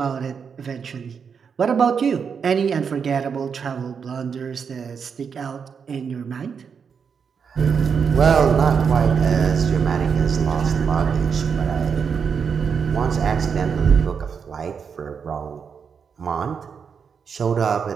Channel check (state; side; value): quieter; left; 6.4 dB